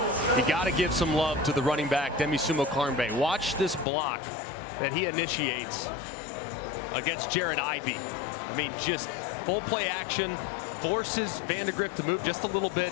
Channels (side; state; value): right; drops out; at 3.9 s